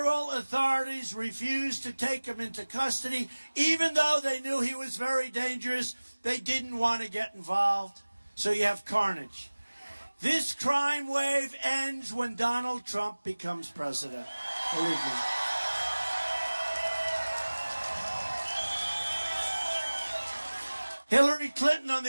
authorities refused to take him into custody, even though they knew he was very dangerous. They didn't want to get involved. So you have carnage. This crime wave ends when Donald Trump becomes president. Believe me. Hillary Clinton, on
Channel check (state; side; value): inverted; both; correlation -1.00